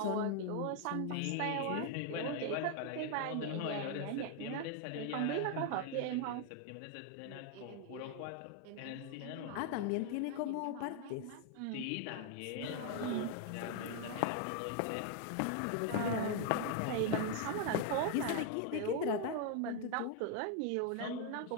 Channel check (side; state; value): both; different; correlation 0.00